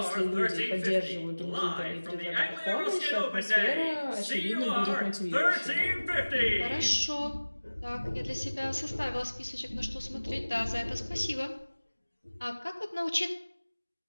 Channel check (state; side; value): inverted; both; correlation -1.00